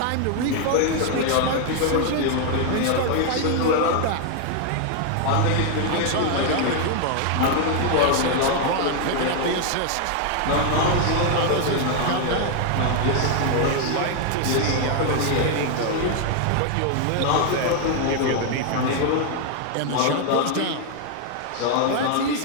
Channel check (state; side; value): different; both; correlation 0.00